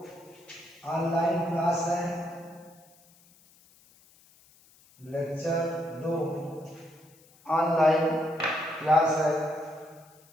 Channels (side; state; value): left; noise; hiss, 28 dB below the sound